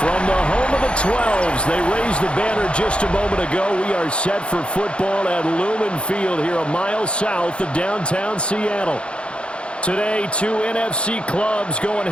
the home of the 12s, they raised the banner just a moment ago. We are set for football at Lumen Field here a mile south of downtown Seattle. Today, two NFC clubs going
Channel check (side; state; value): right; late; 0.057 ms